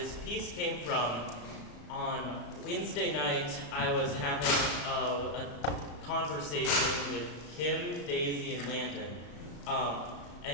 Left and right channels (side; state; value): right; late; 35 ms